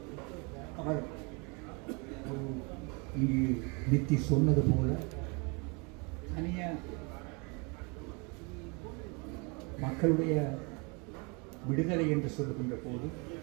அவர் இங்கு நித்தி சொன்னது போல தனியாக மக்களுடைய விடுதலை என்று சொல்லுகின்ற போது,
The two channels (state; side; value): quieter; left; 31.1 dB